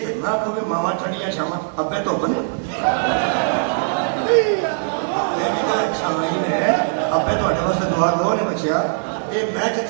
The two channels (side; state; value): left; silent; digital silence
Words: ਨਾ ਕੋਈ ਮਾਵਾਂ ਠੰਡੀਆਂ ਛਾਵਾਂ ਅੱਬੇ ਤੋਂ ਬਣੇ ਇਹ ਵੀ ਤਾਂ ਛਾਵਾਂ ਹੀ ਨੇ ਅੱਬੇ ਤੁਹਾਡੇ ਵਾਸਤੇ ਦੁਆ ਗੋ ਨੇ ਬੱਚਿਆ ਇਹ ਮੈਂ